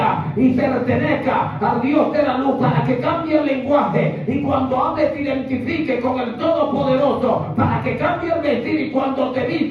y pertenezca al Dios de la luz, para que cambie el lenguaje y cuando hables te identifique con el Todopoderoso, para que cambie el vestir y cuando te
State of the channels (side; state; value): both; identical; correlation 1.00